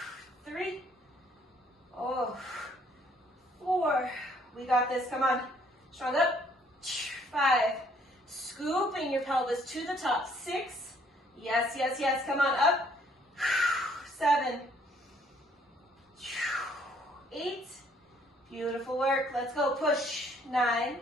3. Oh. 4. We got this. Come on. Strong up. 5. Scooping your pelvis to the top. 6. Yes, yes, yes. Come on. Up. 7. 8. Beautiful work. Let's go. Push. 9.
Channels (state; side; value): normal; both; correlation 0.64